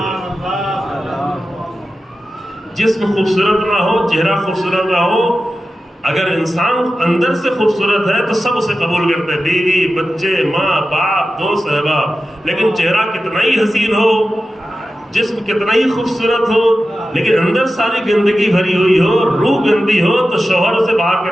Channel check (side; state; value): both; normal; correlation 0.93